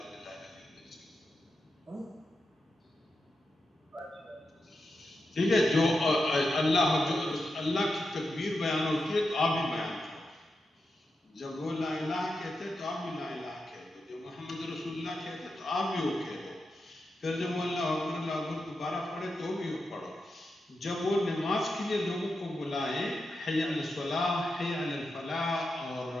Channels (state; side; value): normal; both; correlation 0.88